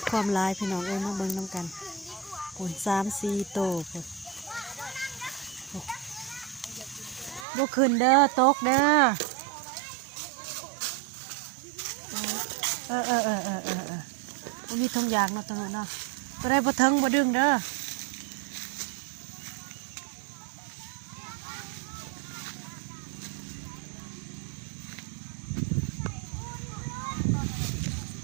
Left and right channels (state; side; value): drops out; left; at 7.5 s